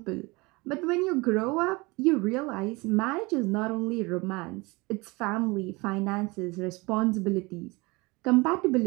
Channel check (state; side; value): quieter; left; 24.8 dB